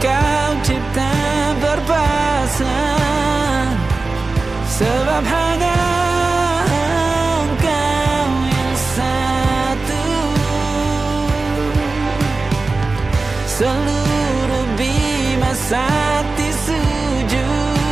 kau cipta berpasang, sebab hanya engkau yang satu. Seluruh bima sakti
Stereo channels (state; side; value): quieter; left; 3.6 dB